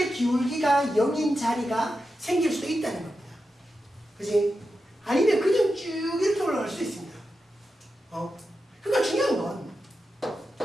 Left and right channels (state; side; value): normal; both; correlation 0.89